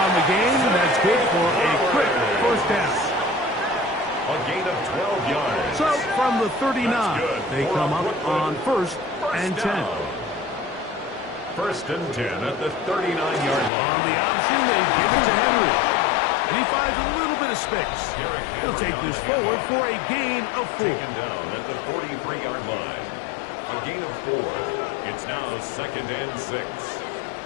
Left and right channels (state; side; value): drops out; right; at 13.7 s